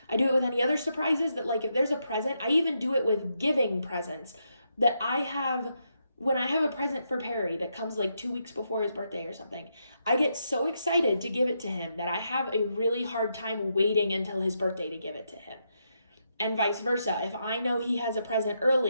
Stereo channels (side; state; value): both; inverted; correlation -0.81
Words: I do it with any other surprises, that like if there's a present, I even do it with giving presents, that when I have a present for Perry that comes like 2 weeks before his birthday or something, I get so excited to give it to him that I have a really hard time waiting until his birthday to give it to him. And vice versa. If I know he has a present